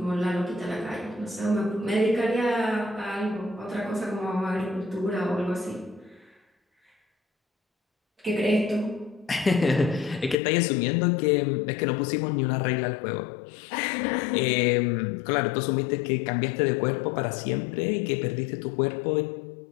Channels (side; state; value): right; drops out; at 10.4 s